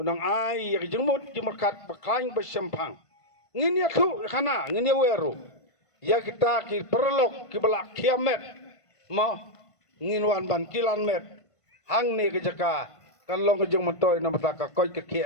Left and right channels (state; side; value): late; right; 1.5 ms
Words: ay yak jumut jumakat pakain bersempang. Ngin ya tu kana ngin ya weru. Ya kita ki perlok ki belak kiamet. Mo ngin wan ban kilan met. Hang ne ke jaka kan long ke jung mentoy na mataka koi ke